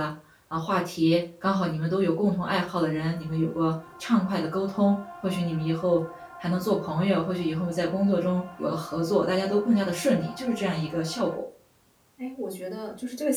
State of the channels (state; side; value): identical; both; correlation 1.00